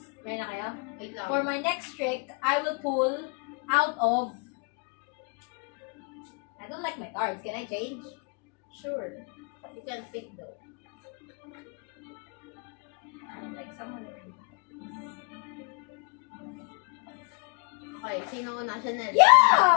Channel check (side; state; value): right; quieter; 32.6 dB